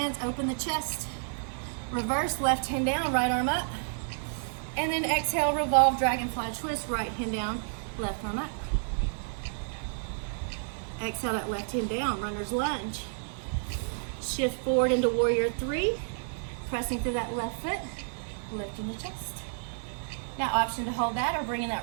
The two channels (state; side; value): silent; left; digital silence